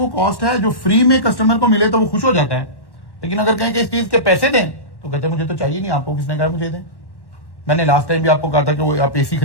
कॉस्ट है जो फ्री में कस्टमर को मिले तो वो खुश हो जाता है, लेकिन अगर कहें कि इस चीज के पैसे दें तो कहते हैं मुझे तो चाहिए नहीं, आपको किसने कहा मुझे दें। मैंने लास्ट टाइम भी आपको कहा था कि वो आप AC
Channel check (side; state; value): right; late; 1.1 ms